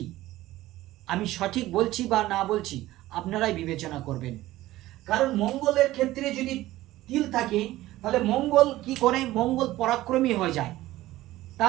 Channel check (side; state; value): left; quieter; 16.3 dB